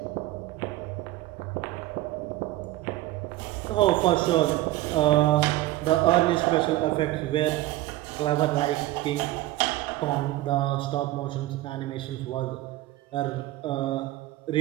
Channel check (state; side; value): quieter; left; 16.3 dB